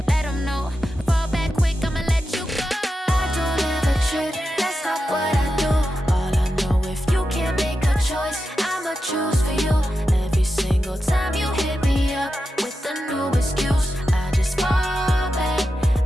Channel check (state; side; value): normal; both; correlation 0.90